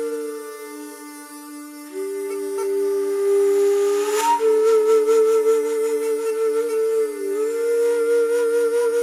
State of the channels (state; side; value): identical; both; correlation 1.00